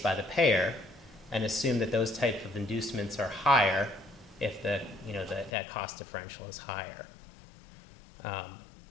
by the payer and assume that those types of inducements are higher if that cost differential is higher.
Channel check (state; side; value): drops out; right; at 5.5 s